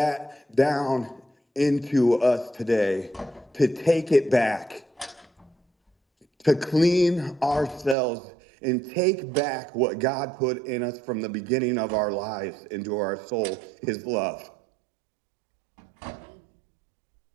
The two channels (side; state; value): left; drops out; at 8.0 s